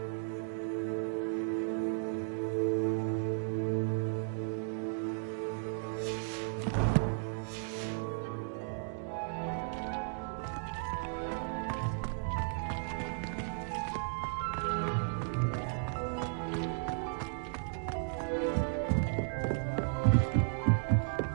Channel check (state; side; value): silent; left; digital silence